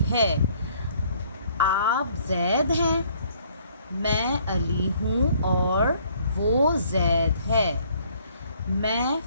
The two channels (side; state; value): both; inverted; correlation -0.62